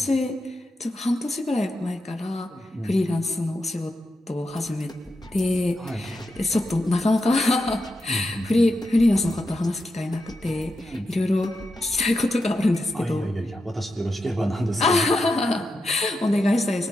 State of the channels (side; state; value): both; normal; correlation 0.87